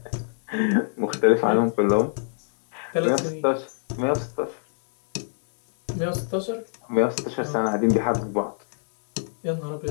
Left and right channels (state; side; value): silent; right; digital silence